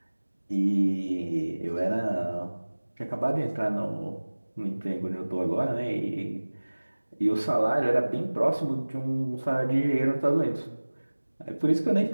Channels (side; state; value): both; inverted; correlation -1.00